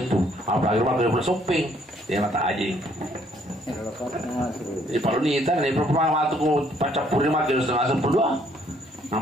tuh apalagi rumah udah shopping dia mata aja di palu nih tan nih perempuan waktu ku pacar purnima kira langsung berdoa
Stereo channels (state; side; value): normal; both; correlation 0.65